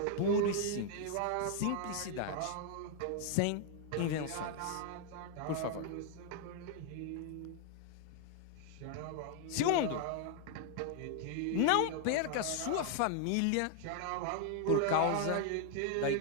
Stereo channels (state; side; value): different; both; correlation 0.00